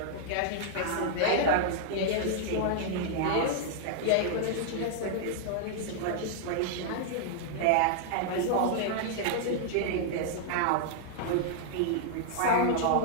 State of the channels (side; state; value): both; different; correlation -0.01